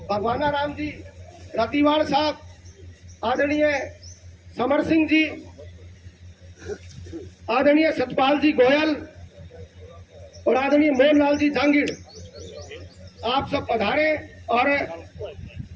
भगवानाराम जी रतिवाल साहब, आदरणीय समर सिंह जी, आदरणीय सतपाल जी गोयल और आदरणीय मोहनलाल जी जांगीर, आप सब पधारे और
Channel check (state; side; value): identical; both; correlation 1.00